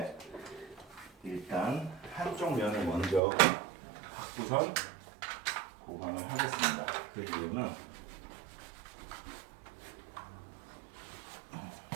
일단 한쪽 면을 먼저 갖고선 보강을 하겠습니다. 그 이유는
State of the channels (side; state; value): left; drops out; at 3.2 s